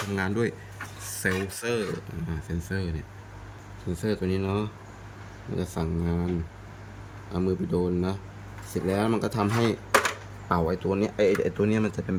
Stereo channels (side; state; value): both; identical; correlation 1.00